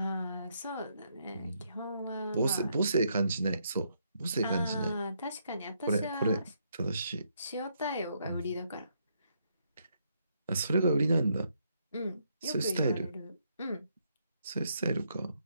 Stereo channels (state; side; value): inverted; both; correlation -0.75